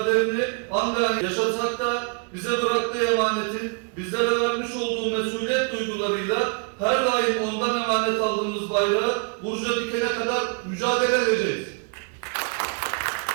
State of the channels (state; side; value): quieter; left; 37.1 dB